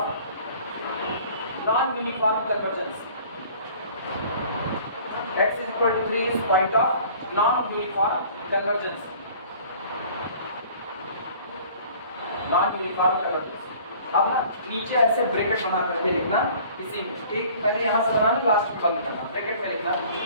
non-uniform convergence, x is equal to 3 is point of non-uniform convergence, non-uniform convergence। अब ना नीचे ऐसे bracket बना करके लिखना, इसी में एक पहले यहां से बनाना, लास्ट में बंद करना, ब्रैकेट में लिखना,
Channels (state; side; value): inverted; both; correlation -0.50